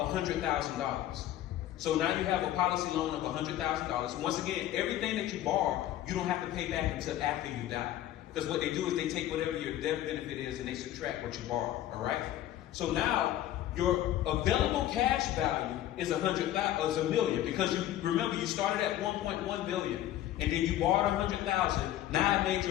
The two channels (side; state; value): right; quieter; 12.9 dB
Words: $100,000. So now you have a policy loan of $100,000. Once again, everything that you borrow, you don't have to pay back until after you die. Because what they do is they take whatever your death benefit is and they subtract what you borrow, all right? So now your available cash value is $1 million because you remember you started at 1.1 billion and then you borrowed 100,000. Now I made